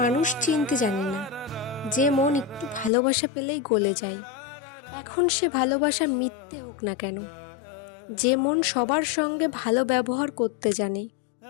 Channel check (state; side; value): drops out; right; at 2.9 s